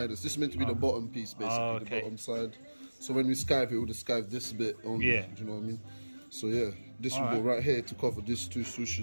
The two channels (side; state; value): both; inverted; correlation -1.00